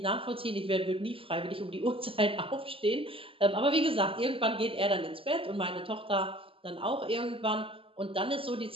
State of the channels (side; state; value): left; late; 0.26 ms